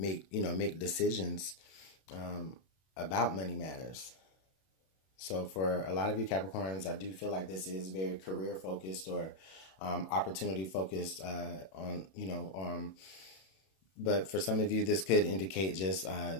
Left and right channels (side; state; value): right; late; 32 ms